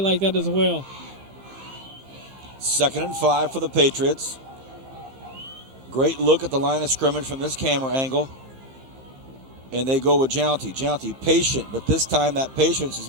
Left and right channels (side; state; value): left; late; 15 ms